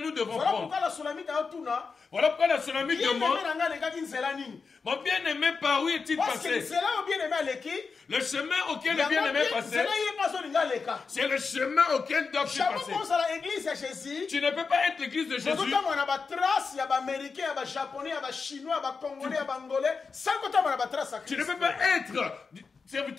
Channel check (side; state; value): right; quieter; 4.9 dB